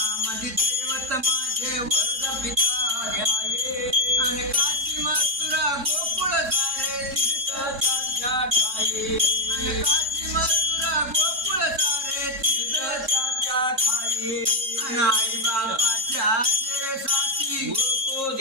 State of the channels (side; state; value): left; late; 3.7 ms